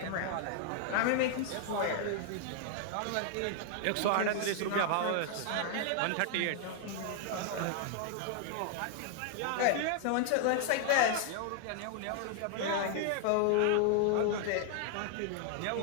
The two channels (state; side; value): different; both; correlation 0.00